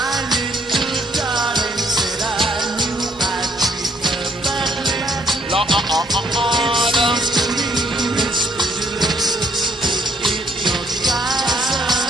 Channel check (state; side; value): normal; both; correlation 0.67